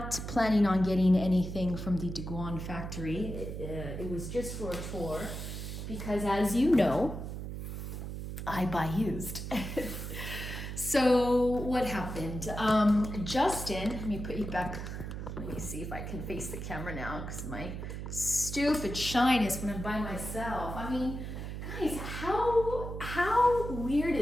planning on getting anything from the Digoin factory. It was just for a tour because, as you know, I buy used. So what happened? Justin, let me put you back. Let me see if I can face the camera now because my stupid shyness when I'm by myself. I mean, guys, how weird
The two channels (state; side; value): noise; right; hum, 6 dB below the sound